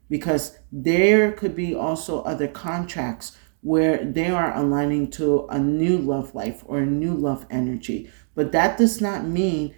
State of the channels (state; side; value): silent; left; digital silence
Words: because there could be also other contracts where they are aligning to a new love life or a new love energy. But that does not mean